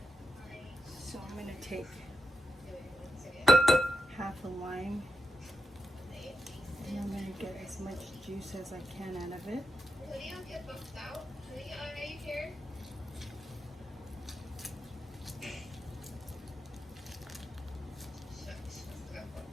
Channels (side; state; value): both; normal; correlation 0.88